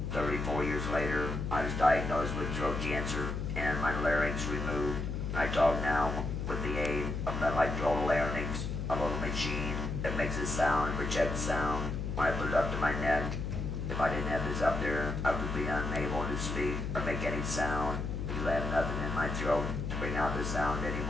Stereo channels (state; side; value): noise; left; hum, 3 dB below the sound